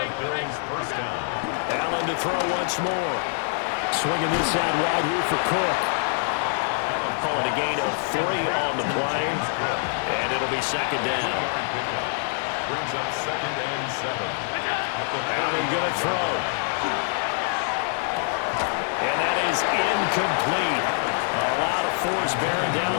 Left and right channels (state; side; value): silent; right; 61 dB below the other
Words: Allen to throw once more. Swinging this out wide here for Cook. Calling a gain of 3 on the play. And it'll be second down. Brings up 2nd and 7. Allen going to throw. And that is incomplete. A lot of force bearing down